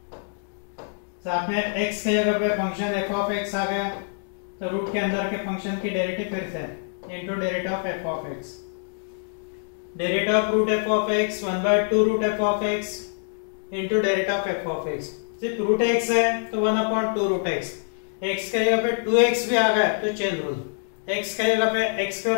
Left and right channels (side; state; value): right; silent; digital silence